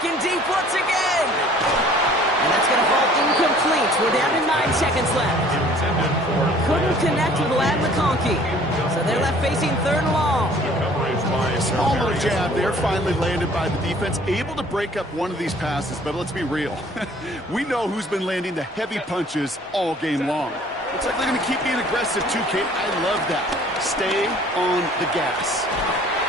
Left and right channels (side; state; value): both; normal; correlation 0.53